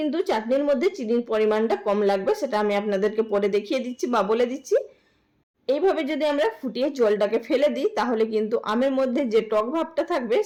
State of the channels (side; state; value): both; identical; correlation 1.00